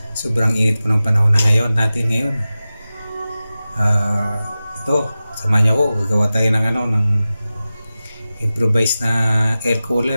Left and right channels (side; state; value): both; inverted; correlation -0.95